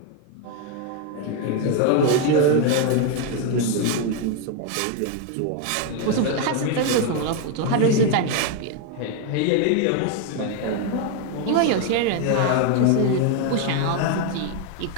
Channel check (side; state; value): both; different; correlation 0.01